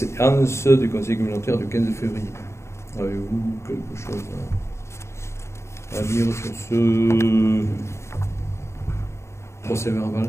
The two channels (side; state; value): right; late; 0.13 ms